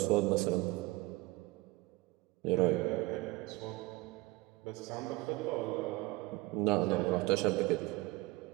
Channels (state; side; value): quieter; left; 20.8 dB